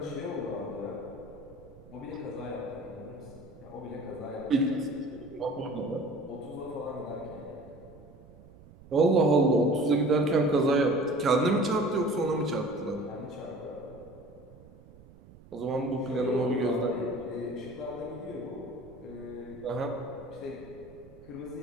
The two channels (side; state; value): right; noise; rumble, 21 dB below the sound